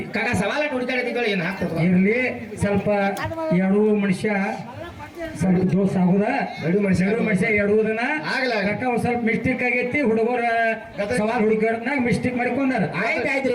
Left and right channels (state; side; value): identical; both; correlation 1.00